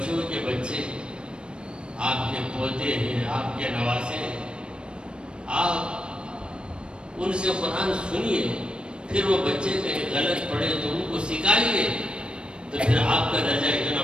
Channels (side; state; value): left; late; 0.055 ms